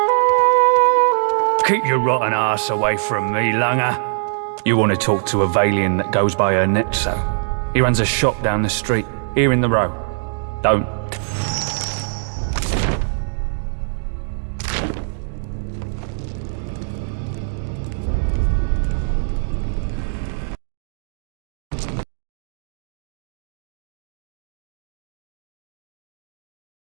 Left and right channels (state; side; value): silent; left; digital silence